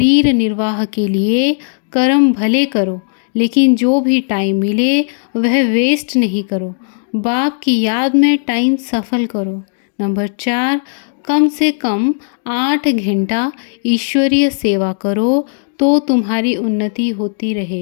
निर्वाह के लिए कर्म भले करो, लेकिन जो भी टाइम मिले वह वेस्ट नहीं करो। बाप की याद में टाइम सफल करो। नंबर 4, कम से कम 8 घंटा ईश्वरीय सेवा करो तो तुम्हारी उन्नति होती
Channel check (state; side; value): silent; right; digital silence